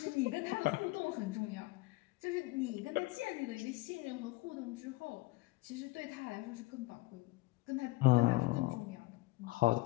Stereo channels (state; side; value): quieter; right; 21.2 dB